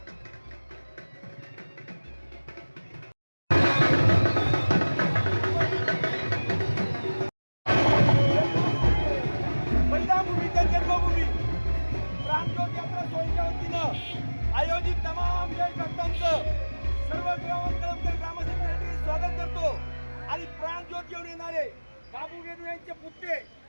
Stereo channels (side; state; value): both; inverted; correlation -1.00